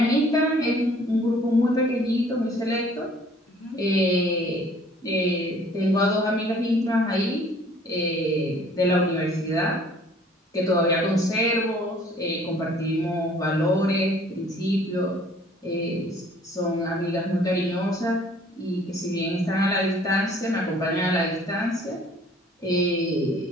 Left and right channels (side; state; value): both; normal; correlation 0.55